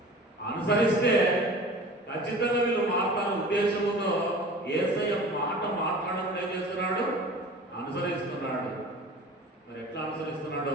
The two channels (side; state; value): both; normal; correlation 0.40